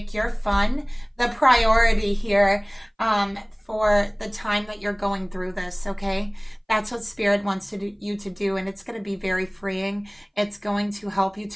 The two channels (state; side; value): identical; both; correlation 1.00